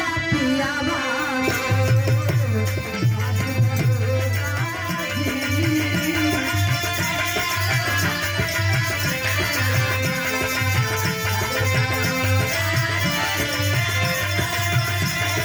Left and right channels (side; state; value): both; identical; correlation 1.00